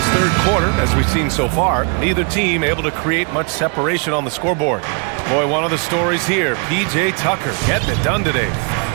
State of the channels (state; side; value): quieter; left; 36.7 dB